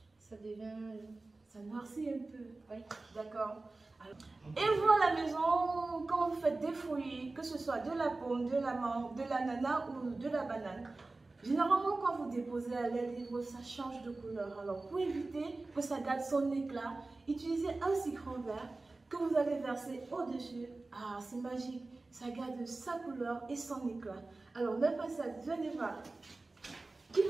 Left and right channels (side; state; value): left; quieter; 3.3 dB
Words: Ça devient. Ça noircit un peu. Oui. D'accord. Et vous à la maison, quand vous faites des fruits, que ce soit de la pomme, de la mangue, de l'ananas ou de la banane, généralement quand vous déposez à l'air libre, ça change de couleur. Alors pour éviter que ça garde son éclat, utilisez un citron vert que vous allez verser au-dessus. Ah, c'est magique, ça garde sa couleur et son éclat. Alors mes princesses, venez voir. Qui